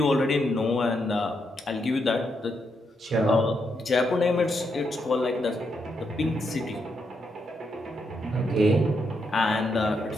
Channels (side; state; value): both; normal; correlation 0.80